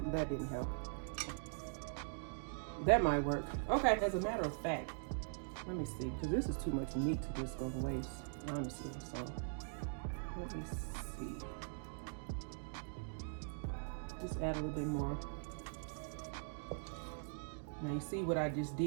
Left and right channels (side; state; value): left; silent; digital silence